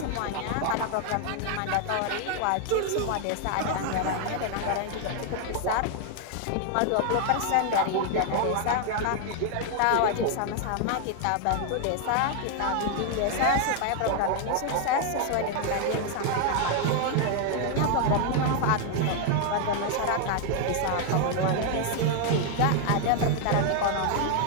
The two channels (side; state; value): both; different; correlation 0.00